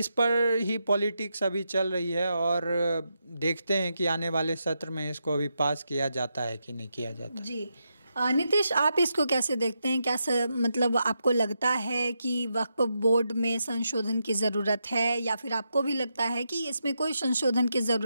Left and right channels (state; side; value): inverted; both; correlation -0.84